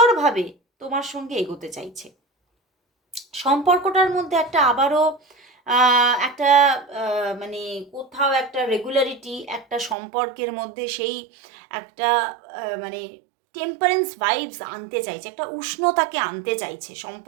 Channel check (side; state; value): left; drops out; at 10.0 s